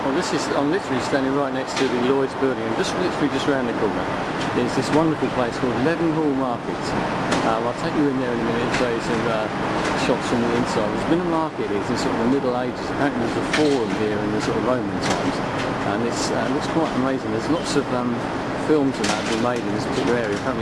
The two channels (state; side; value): identical; both; correlation 1.00